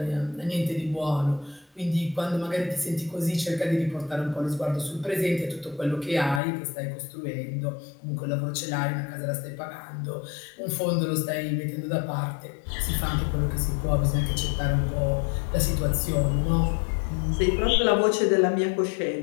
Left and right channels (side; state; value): right; drops out; at 6.4 s